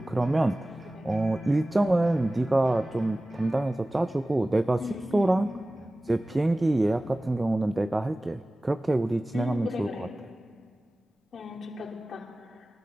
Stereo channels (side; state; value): both; normal; correlation 0.97